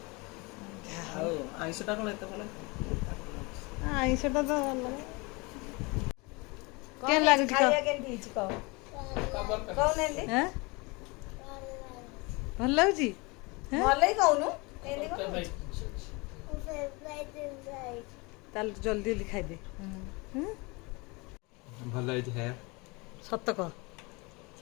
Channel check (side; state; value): right; quieter; 26.7 dB